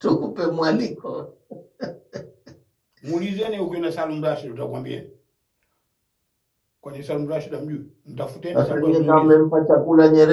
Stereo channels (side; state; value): both; identical; correlation 1.00